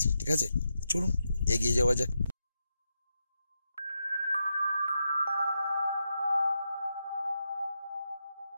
ঠিক আছে? চলুন এগিয়ে যাওয়া যাক।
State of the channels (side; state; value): both; inverted; correlation -0.86